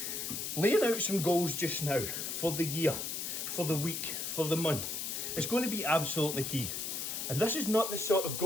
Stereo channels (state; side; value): noise; left; hiss, 3 dB below the sound